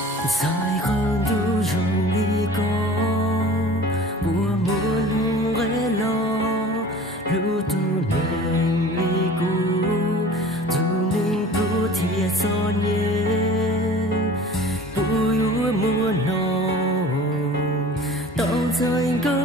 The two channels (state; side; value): normal; both; correlation 0.42